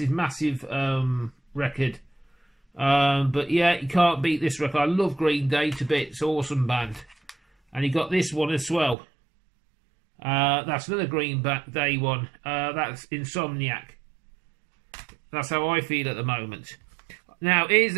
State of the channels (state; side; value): drops out; left; at 9.0 s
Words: record. But, yeah, you can't beat this record. I love Green Day to bits. Awesome band. And you got this one as well. That's another Green Day one. That's Insomniac. That's how I feel at the moment. Now, here's